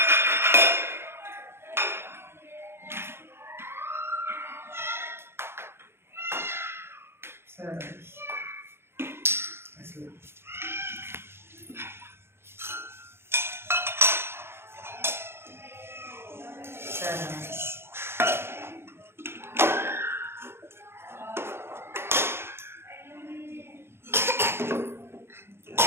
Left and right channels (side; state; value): left; late; 0.12 ms